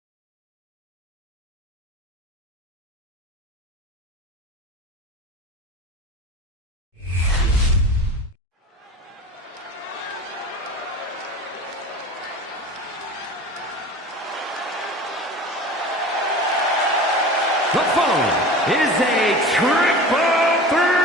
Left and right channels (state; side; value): normal; both; correlation 0.35